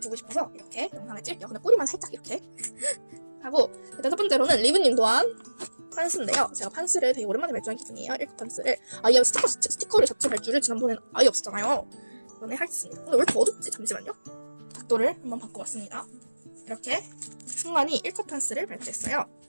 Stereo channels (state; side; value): inverted; both; correlation -1.00